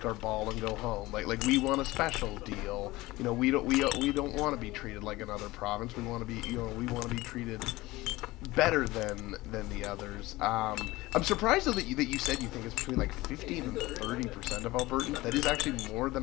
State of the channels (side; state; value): right; quieter; 19.5 dB